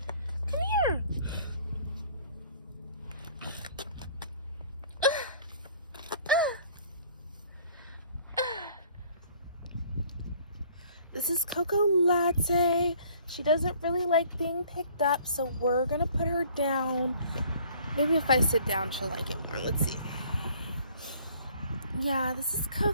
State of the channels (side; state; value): both; inverted; correlation -0.55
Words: Come here. This is Coco Latte. She doesn't really like being picked up, so we're gonna put her down. Maybe if I sit down, she'll like it more. Let's see. Yeah, this is